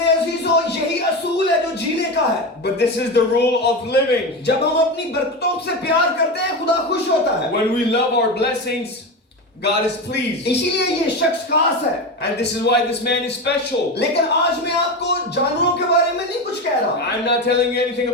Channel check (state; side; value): normal; both; correlation 0.20